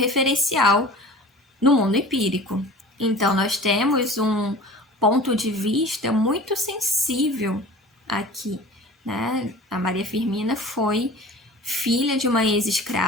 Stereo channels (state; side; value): normal; both; correlation 0.41